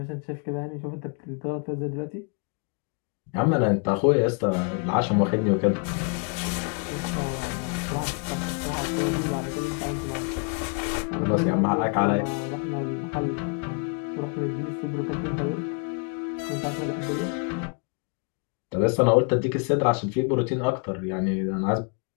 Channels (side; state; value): right; quieter; 35.6 dB